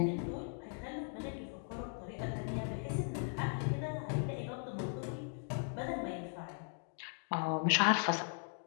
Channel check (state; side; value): silent; right; 52 dB below the other